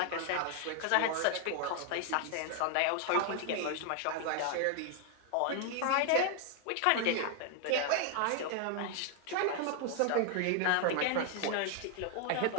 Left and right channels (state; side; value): different; both; correlation 0.00